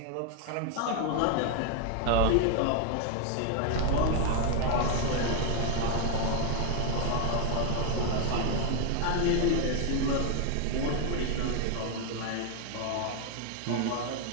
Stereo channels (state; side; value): different; both; correlation 0.00